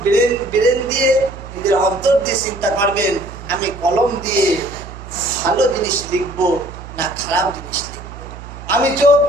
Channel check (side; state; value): right; noise; hum, 14 dB below the sound